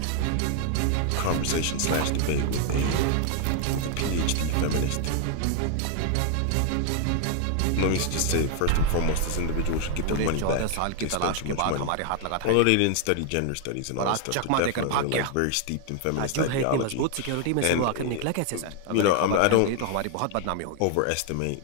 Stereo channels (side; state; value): both; different; correlation 0.00